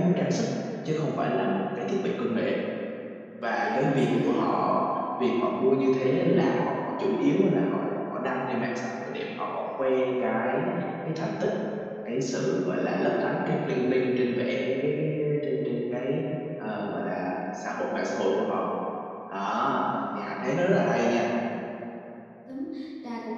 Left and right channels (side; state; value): both; identical; correlation 1.00